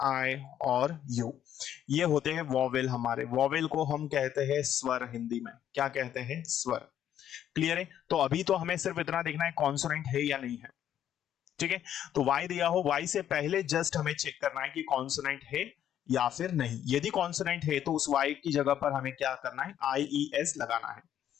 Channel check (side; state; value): right; quieter; 10.5 dB